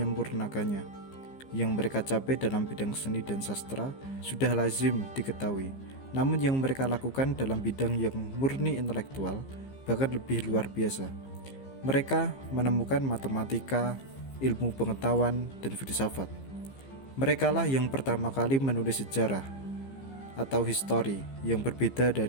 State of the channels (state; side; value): late; right; 15 ms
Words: Yang mereka capai dalam bidang seni dan sastra sudah lazim diketahui. Namun yang mereka lakukan dalam bidang yang murni intelektual bahkan lebih luar biasa. Mereka menemukan matematika, ilmu pengetahuan, dan filsafat. Merekalah yang pertama kali menulis sejarah atau histori yang berbeda